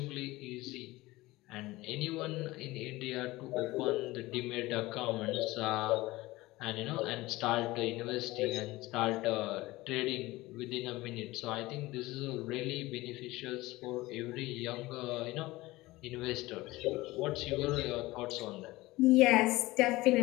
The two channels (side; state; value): right; quieter; 19.5 dB